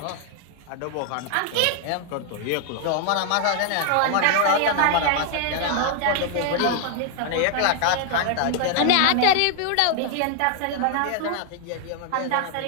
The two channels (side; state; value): both; different; correlation 0.00